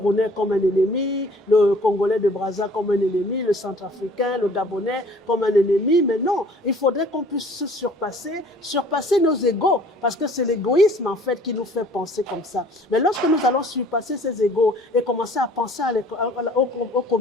comme un ennemi, le Congolais de Brazza comme un ennemi, le Centrafricain, le Gabonais comme un ennemi. Mais non, il faudrait qu'on puisse se surpasser nos égos, parce que c'est l'égoïsme en fait qui nous fait penser comme ça. Mais lorsque nous allons surpasser ces égos et commencer à penser aux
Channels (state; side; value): normal; both; correlation 0.53